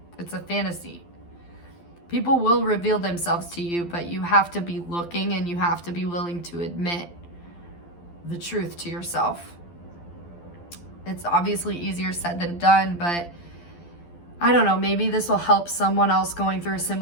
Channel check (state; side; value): late; right; 12 ms